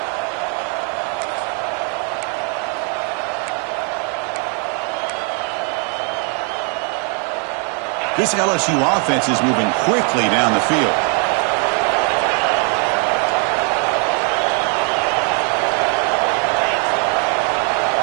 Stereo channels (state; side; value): quieter; left; 39.2 dB